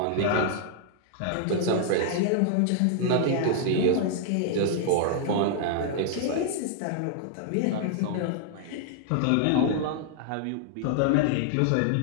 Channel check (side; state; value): both; different; correlation -0.01